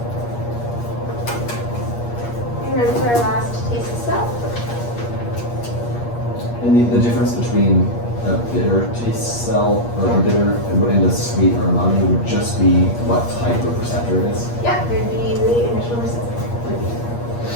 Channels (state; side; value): late; right; 8.5 ms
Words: You ready for our last taste of stuff? And the difference between a bitter taste cell or a bitter and a sweet or umami would just be what type of receptor it is. Yeah, there'd be the initial receptor.